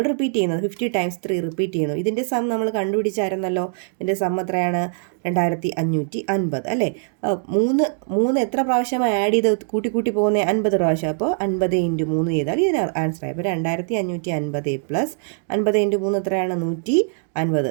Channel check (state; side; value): silent; left; digital silence